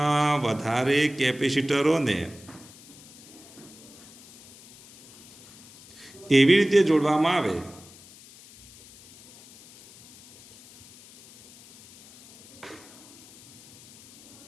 વધારે કેપેસિટરોને એવી રીતે જોડવામાં આવે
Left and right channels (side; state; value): left; noise; hiss, 22 dB below the sound